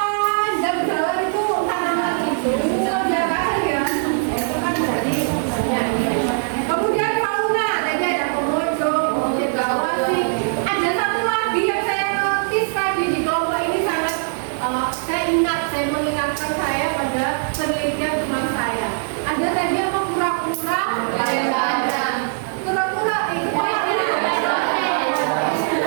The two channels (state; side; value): silent; left; digital silence